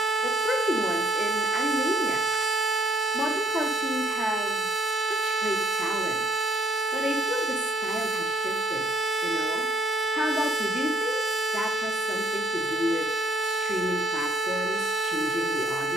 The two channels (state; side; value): normal; both; correlation 0.65